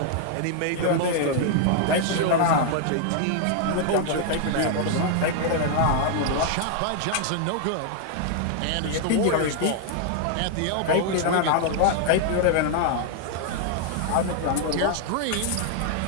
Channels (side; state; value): both; different; correlation 0.00